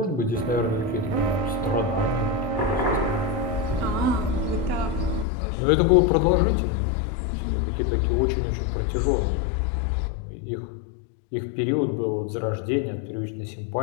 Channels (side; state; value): right; drops out; at 5.2 s